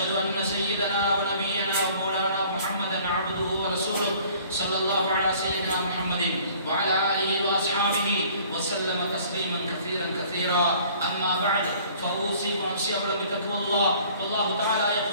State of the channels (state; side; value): inverted; both; correlation -0.53